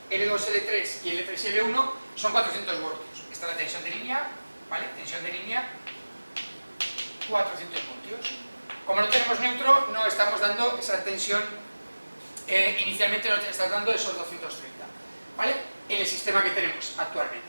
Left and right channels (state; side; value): inverted; both; correlation -1.00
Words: L2, L3 y L3 y L1 son 400 voltios. Esta es la tensión de línea, ¿vale? Tensión de línea, 400 voltios. Como no tenemos neutro, no estamos dando esa tensión, inicialmente no estamos dando esos 230, ¿vale? En el sistema que tenemos actualmente.